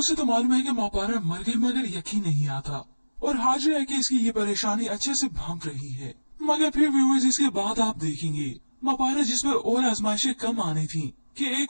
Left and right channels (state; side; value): inverted; both; correlation -1.00